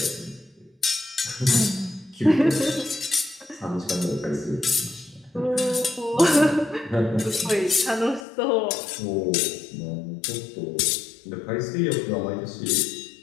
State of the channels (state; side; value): drops out; right; at 8.2 s